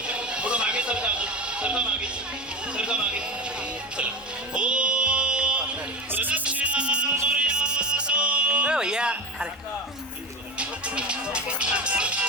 थोडं मागे सरका मागे चला. ओ प्रदक्षिणा भैया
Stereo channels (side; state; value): both; normal; correlation 0.24